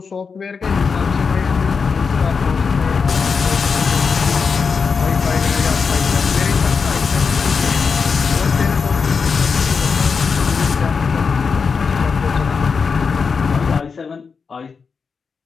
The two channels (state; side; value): quieter; right; 5.4 dB